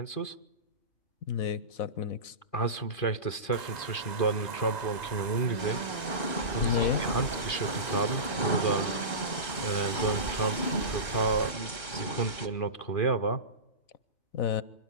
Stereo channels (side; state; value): right; late; 2.2 ms